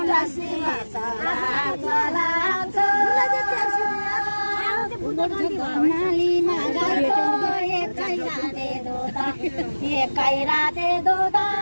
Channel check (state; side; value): inverted; both; correlation -1.00